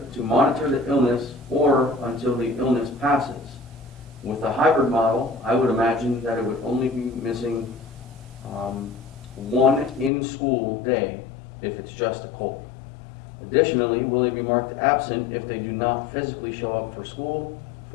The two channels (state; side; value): drops out; right; at 10.1 s